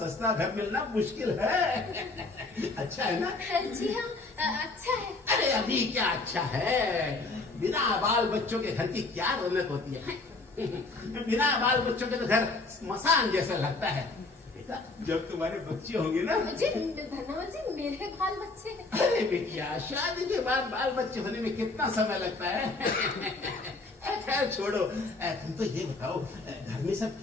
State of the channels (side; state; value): right; quieter; 3.4 dB